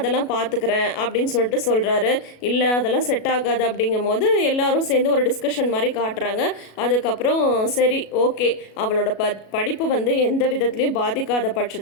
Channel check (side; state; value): right; late; 37 ms